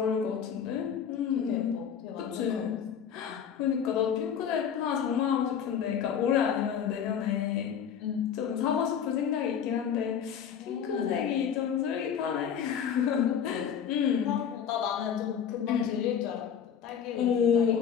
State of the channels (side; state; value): right; quieter; 8.0 dB